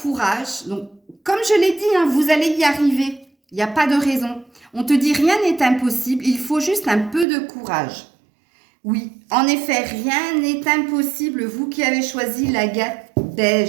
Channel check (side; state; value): left; drops out; at 7.2 s